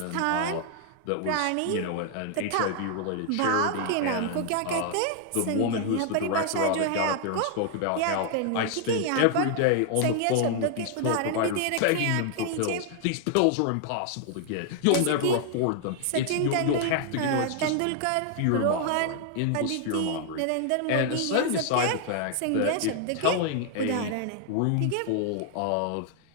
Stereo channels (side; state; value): both; different; correlation 0.00